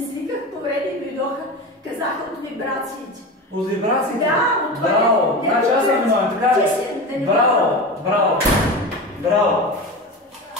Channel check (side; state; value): both; normal; correlation 0.27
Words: повреди, дойдоха, казаха от вибрациите. От вибрациите? Да, от това. Браво! Значи аз съм виновен, така ли? Браво! Браво! Браво!